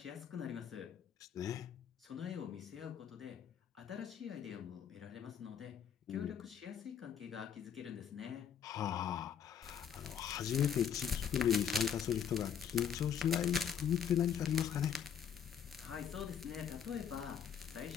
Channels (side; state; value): right; quieter; 8.2 dB